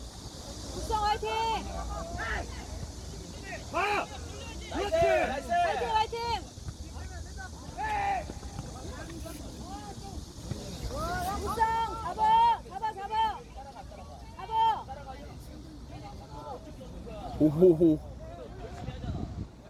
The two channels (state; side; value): identical; both; correlation 1.00